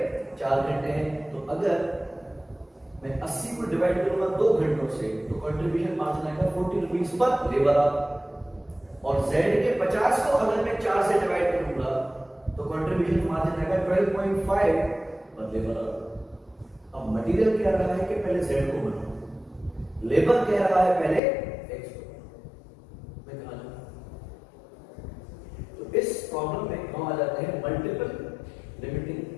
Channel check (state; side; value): drops out; right; at 21.2 s